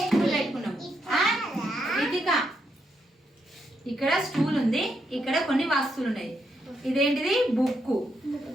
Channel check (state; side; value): normal; both; correlation 0.79